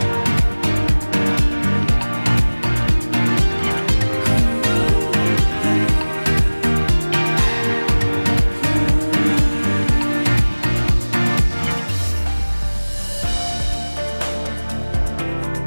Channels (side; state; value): both; inverted; correlation -1.00